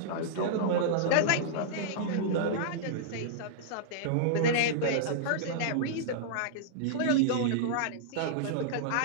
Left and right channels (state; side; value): different; both; correlation -0.02